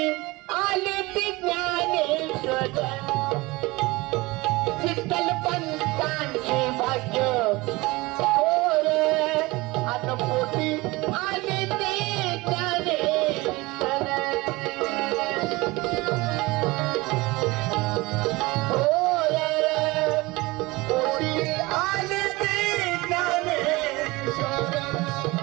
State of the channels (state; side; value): quieter; left; 22.2 dB